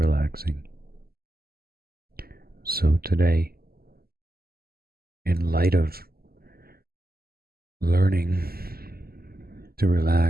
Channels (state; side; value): late; left; 0.45 ms